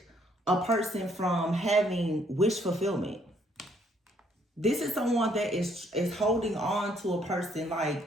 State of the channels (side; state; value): both; normal; correlation 0.67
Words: a person from having wish fulfillment. This is someone that is holding on to a person,